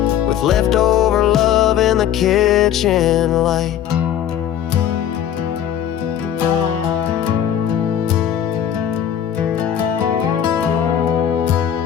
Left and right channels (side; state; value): right; quieter; 9.9 dB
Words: with leftover love in the kitchen light.